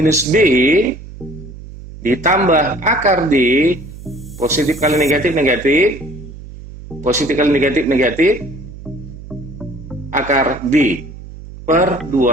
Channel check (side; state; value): right; noise; hum, 15 dB below the sound